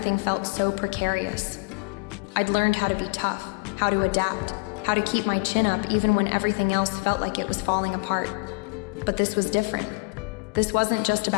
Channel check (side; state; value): right; quieter; 29.6 dB